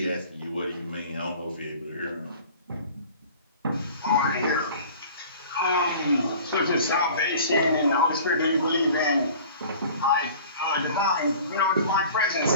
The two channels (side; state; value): both; inverted; correlation -0.44